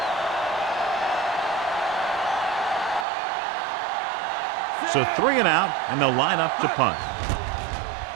So 3 and out, and they'll line up to punt.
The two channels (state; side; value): drops out; left; at 3.1 s